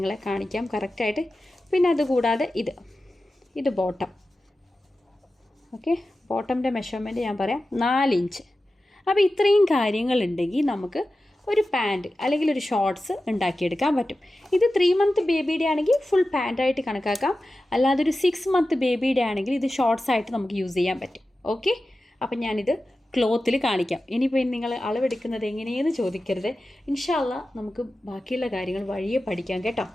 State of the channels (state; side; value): normal; both; correlation 0.94